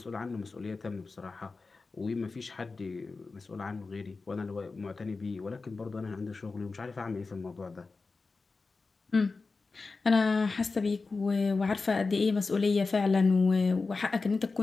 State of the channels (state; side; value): quieter; right; 4.0 dB